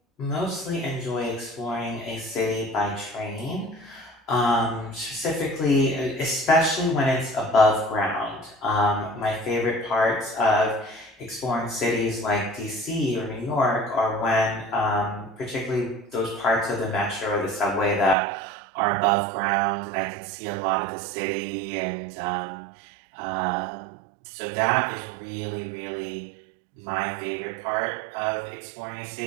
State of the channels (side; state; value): left; drops out; at 18.2 s